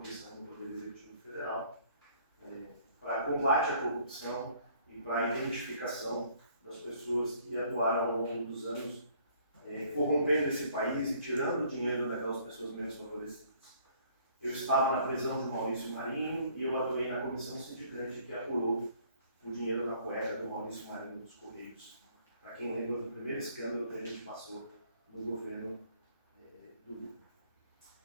do Poder Executivo Federal para combate à corrupção e para a identificação das pessoas que atuaram ao longo dos anos corrompendo esse país e tirando o dinheiro daquelas pessoas menos favorecidas. Eu estava na prisão de Maurício Marinho e eu atuei na comissão sindicante que apurou o dinheiro na cueca do Maurício Marinho dos Correios. Para quem lembra do primeiro escândalo que a gente passou no governo do Lula.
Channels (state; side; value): inverted; both; correlation -0.60